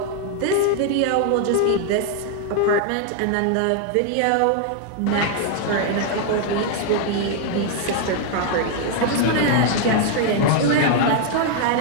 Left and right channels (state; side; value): different; both; correlation 0.00